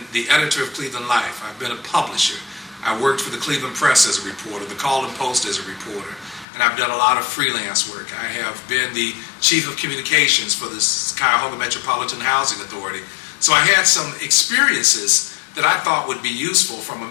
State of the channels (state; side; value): drops out; right; at 6.5 s